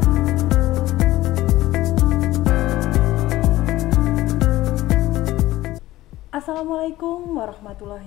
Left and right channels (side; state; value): right; quieter; 16.4 dB